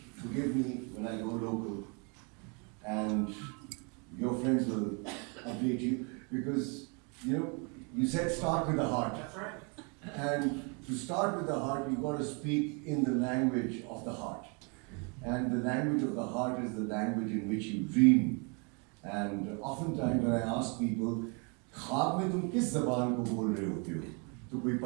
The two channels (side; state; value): left; quieter; 34.1 dB